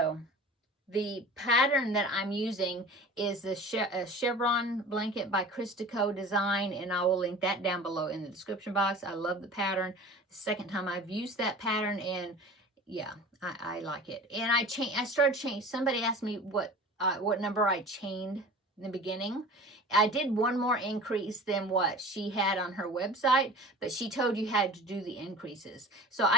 the pattern that I'm using is the chevron blanket by Christico Design, and I will link that down below in the description box. I love the pattern. The second time I've used that pattern, and yeah, I like it. And I started changing. Somebody asked me what number I chained in the beginning. I did one more increase than what she had on her website, but she told you had to do the increases. So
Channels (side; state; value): both; normal; correlation 0.39